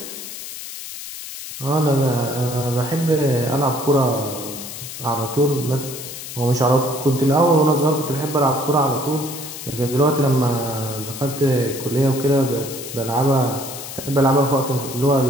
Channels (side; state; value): left; noise; hiss, 10 dB below the sound